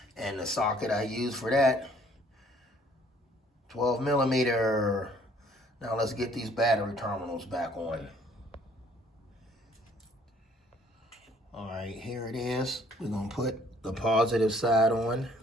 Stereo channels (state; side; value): normal; both; correlation 0.60